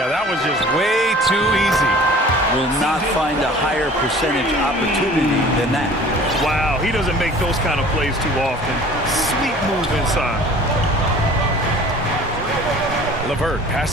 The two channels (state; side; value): normal; both; correlation 0.46